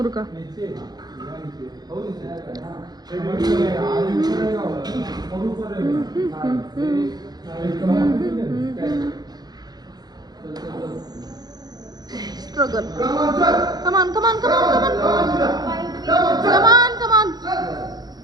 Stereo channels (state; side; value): late; left; 0.19 ms